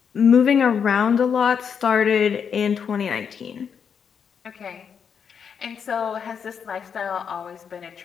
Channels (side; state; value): right; quieter; 7.0 dB